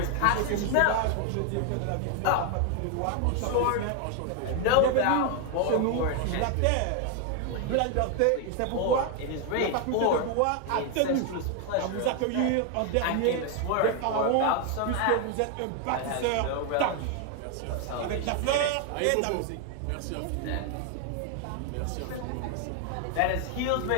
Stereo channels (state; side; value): different; both; correlation 0.00